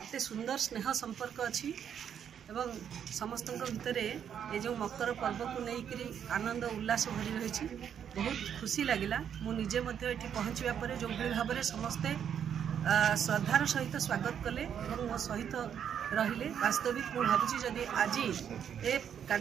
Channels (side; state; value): left; quieter; 8.6 dB